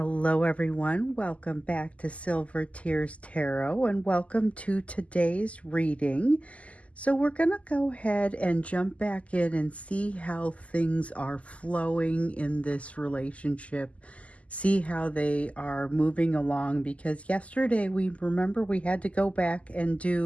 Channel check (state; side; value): late; right; 0.067 ms